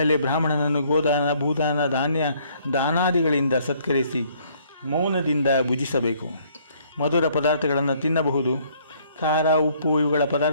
ಬ್ರಾಹ್ಮಣನನ್ನು ಗೋದಾನ, ಭೂದಾನ, ದಾನಾದಿಗಳಿಂದ ಸತ್ಕರಿಸಿ ಮೌನದಿಂದ ಭುಜಿಸಬೇಕು. ಮಧುರ ಪದಾರ್ಥಗಳನ್ನು ತಿನ್ನಬಹುದು. ಖಾರ, ಉಪ್ಪು ಇವುಗಳ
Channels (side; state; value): both; inverted; correlation -0.63